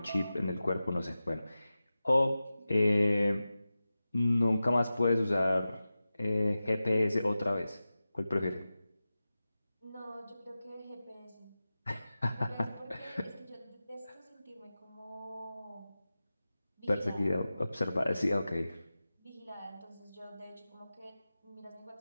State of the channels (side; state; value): both; inverted; correlation -0.95